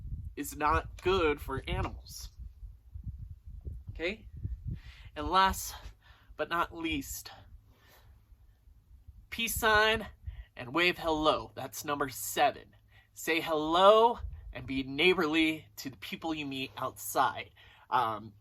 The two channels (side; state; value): both; identical; correlation 1.00